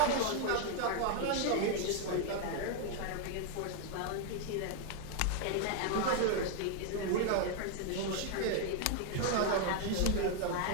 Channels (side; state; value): both; different; correlation 0.01